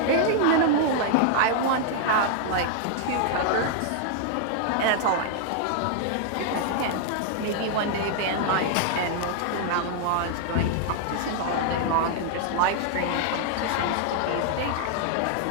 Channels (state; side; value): different; both; correlation -0.01